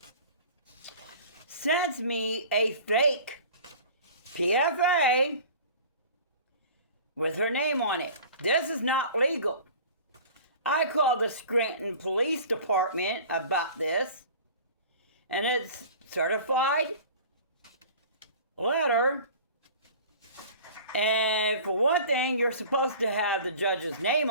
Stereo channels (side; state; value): both; inverted; correlation -0.42